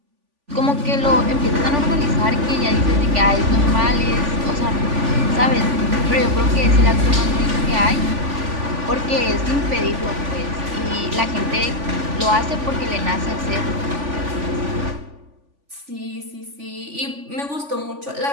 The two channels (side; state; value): left; late; 3.5 ms